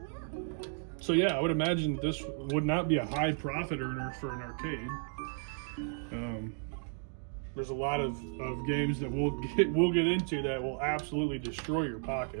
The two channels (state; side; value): silent; left; 55 dB below the other